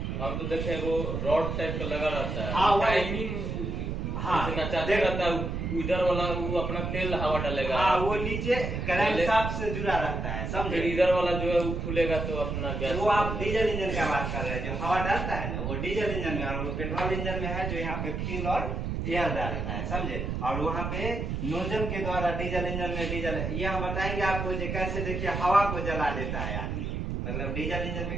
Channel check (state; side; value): noise; right; rumble, 3 dB below the sound